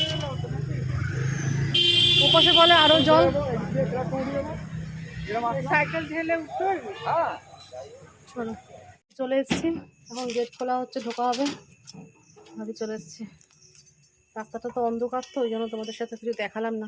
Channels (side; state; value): both; identical; correlation 1.00